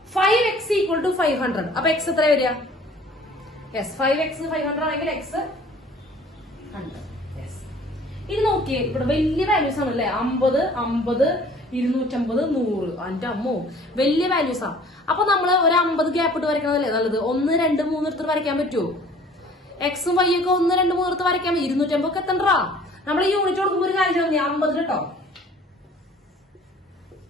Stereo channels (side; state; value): both; normal; correlation 0.51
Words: 5x ഈക്വൽ ടു 500. അപ്പൊ x എത്ര വരിക? യെസ്, 5x 500 ആണെങ്കിൽ x 100. യെസ്, ഇത് നോക്കിയേ, ഇവിടെ വലിയ വാല്യൂസ് ആണല്ലേ. 50, 50, 250, 100. എന്റെ അമ്മോ, വലിയ വാല്യൂസ് ആണ്. അപ്പൊ നമ്മള് ഒരു 50 ഗ്യാപ്പ് ഇട്ട് വരയ്ക്കണതല്ലേ നല്ലത്. 1, 2, 3 എടുത്ത് വരയ്ക്കാൻ പറ്റുമോ? എക്സും വൈ ഒക്കെ 1, 2, 3 എടുത്ത് വരയ്ക്കാൻ പറ്റും. 250 ഒക്കെ എത്തണ്ടാ. നമ്മൾ ഈ യൂണിറ്റ് കൊടുക്കുമ്പോൾ ഒരു കാര്യം 50 കേട്ടോ.